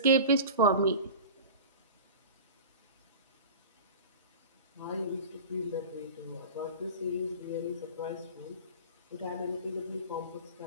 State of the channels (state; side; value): inverted; both; correlation -0.33